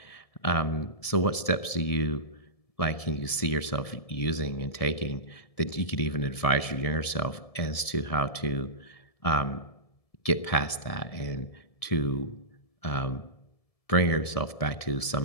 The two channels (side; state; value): right; late; 1.7 ms